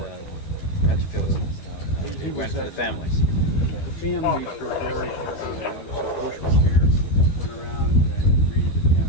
feel it went for the families? The families were very hard on them. Mrs. Bush was here, went around and greeted the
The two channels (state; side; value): late; right; 12 ms